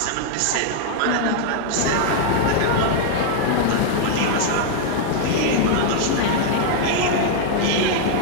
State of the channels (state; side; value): different; both; correlation -0.01